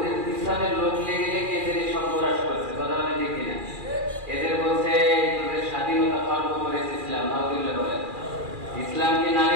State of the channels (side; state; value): left; late; 2.4 ms